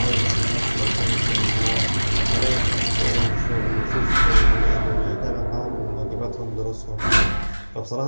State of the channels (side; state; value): both; inverted; correlation -1.00